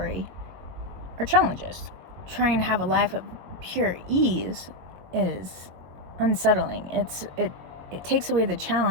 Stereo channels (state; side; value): late; left; 22 ms